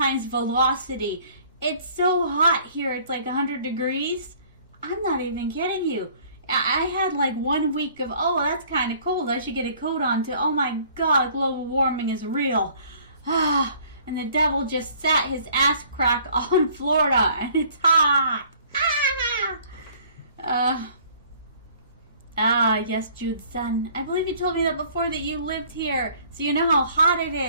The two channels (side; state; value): both; inverted; correlation -0.55